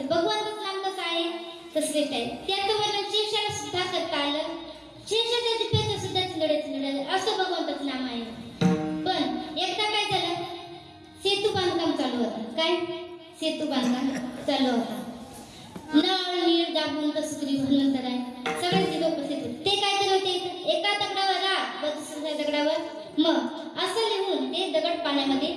श्रेष्ठ आहे. त्याचं वर्णन शेषाला सुद्धा करता आलं. शेषाच्या जिभेचं सुद्धा चिंदडे असं भगवंताचं नाम आहे. पण एकदा काय झालं, सेतू बांधकाम चालू होतं. काय सेतू बांधकाम चालू होता. नळ नीळ दाबून कसुरी भगवंतर आहे, सगळ्यांची लोक उपस्थित होते. ते काय करत होते, एका दगडावर राग व दुसऱ्या दगडावर मग असं लिहून ते दगड पाण्यामध्ये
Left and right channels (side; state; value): both; identical; correlation 1.00